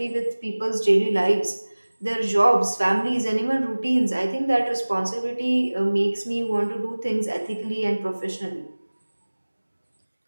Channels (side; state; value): both; inverted; correlation -1.00